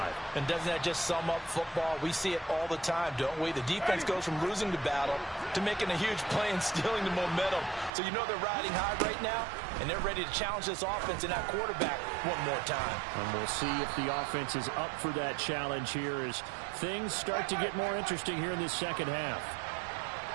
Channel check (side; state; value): left; drops out; at 7.9 s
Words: And doesn't that just sum up football? We see it all the time, don't we? The defense goes from losing the battle to making a huge play and stealing the momentum. So you know they're riding high right now, and they're ready to challenge this offense and that quarterback one more time. And we'll see if the offense is up for that challenge here as things start to get more interesting here in this second half.